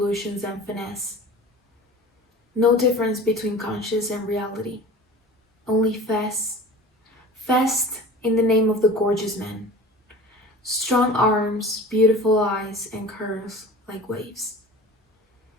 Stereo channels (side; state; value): both; normal; correlation 0.39